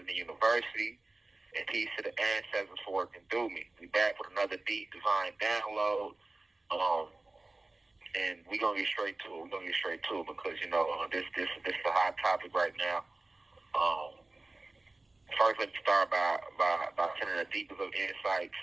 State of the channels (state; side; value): quieter; left; 3.0 dB